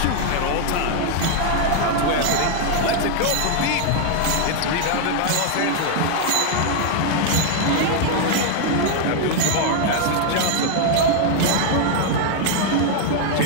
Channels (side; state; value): both; different; correlation 0.00